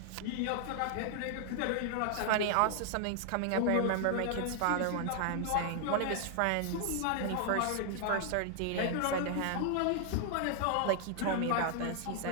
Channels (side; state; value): both; different; correlation 0.00